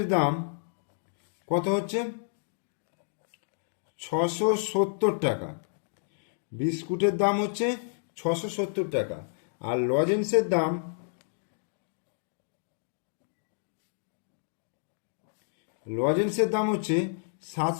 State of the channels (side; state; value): right; silent; digital silence